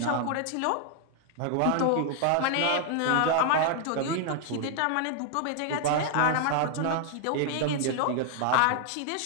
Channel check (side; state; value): both; different; correlation 0.00